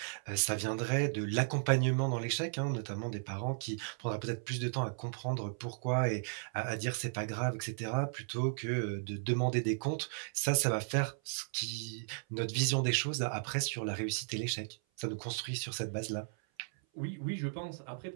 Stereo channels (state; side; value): silent; left; 54 dB below the other